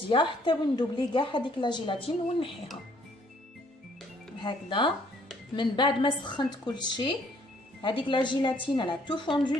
حتى وندوبلي كاع هذيك لا جيلاتين ونحيها هكذا. من بعد ما سخنت كل شيء Avec la gélatine, elle a tout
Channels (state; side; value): normal; both; correlation 0.64